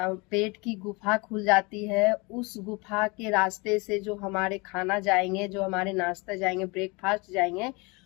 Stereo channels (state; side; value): quieter; right; 27.4 dB